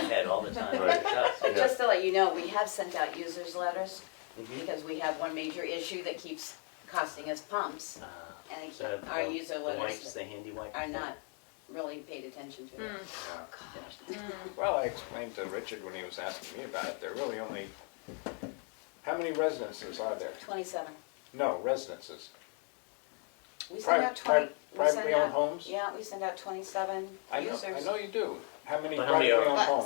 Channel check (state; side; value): quieter; right; 39.5 dB